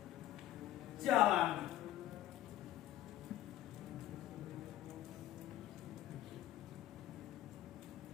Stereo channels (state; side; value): quieter; right; 13.7 dB